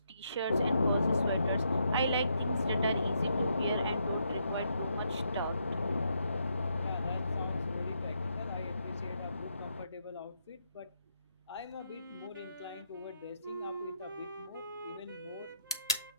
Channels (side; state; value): both; inverted; correlation -0.77